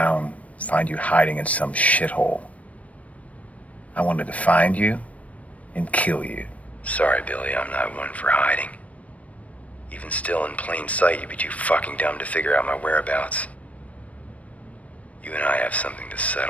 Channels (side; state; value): right; late; 0.067 ms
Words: find you hiding in some shithole. I wanted to find you and kill you. Sorry, Billy, I'm not one for hiding. Even still in plain sight, you'd be too fucking dumb to figure out my whereabouts. You and I have something to